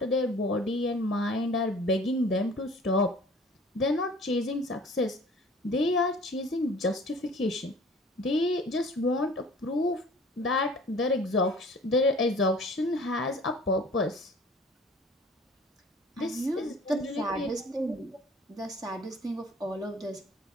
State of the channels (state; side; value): normal; both; correlation 0.48